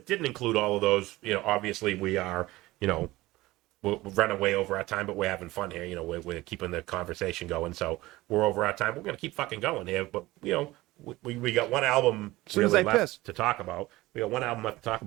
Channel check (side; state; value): left; quieter; 18.7 dB